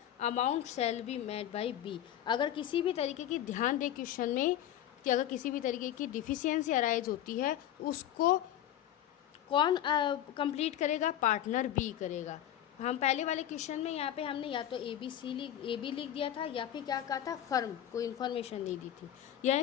amount shall be made by B, अगर किसी भी तरीके की, ध्यान दे क्वेश्चन में कि अगर किसी भी तरीके की डिफिशियंसी अराइज होती है उसको कौन कंप्लीट करेगा? पार्टनर बी करेगा। हम पहले वाले क्वेश्चन में यहाँ पे हमने या तो ए बी लिख दिया था या फिर क्या कहा था, फर्म कोई इन्फॉर्मेशन नहीं दी थी। यह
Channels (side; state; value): right; quieter; 11.4 dB